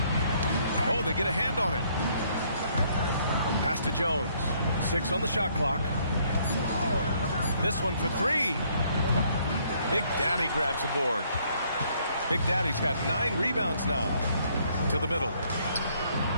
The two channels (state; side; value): inverted; both; correlation -0.66